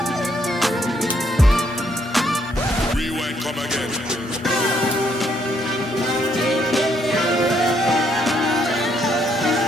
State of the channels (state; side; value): normal; both; correlation 0.71